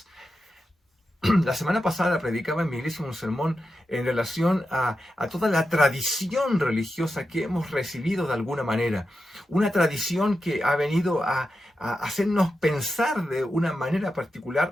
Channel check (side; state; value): both; normal; correlation 0.89